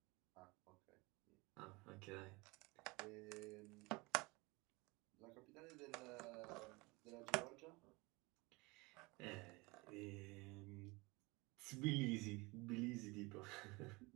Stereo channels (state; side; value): quieter; left; 25.0 dB